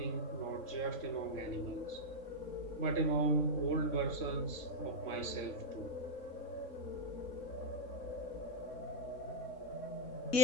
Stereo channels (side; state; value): right; late; 3.6 ms